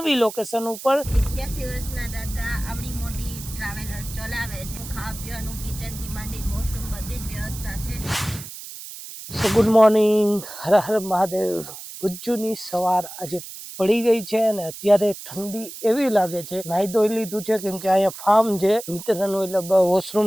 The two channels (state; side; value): noise; right; hiss, 12 dB below the sound